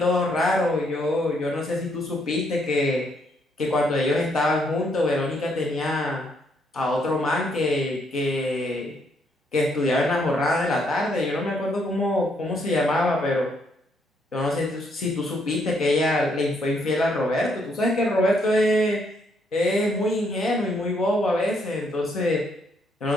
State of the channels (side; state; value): both; normal; correlation 0.72